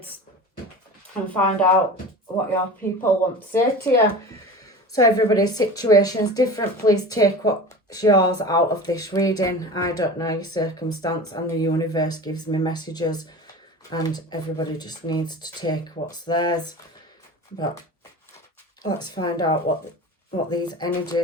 and find out what your people want to say to you. So everybody's situation is different. Please take what's yours out of this reading. I don't know your circumstance, and the universe gives me messages, and everybody just needs to take what's theirs. But let's find out what these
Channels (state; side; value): normal; both; correlation 0.34